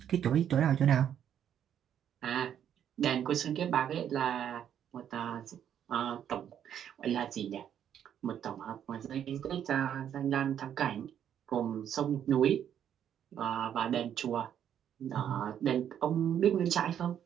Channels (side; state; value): left; quieter; 9.5 dB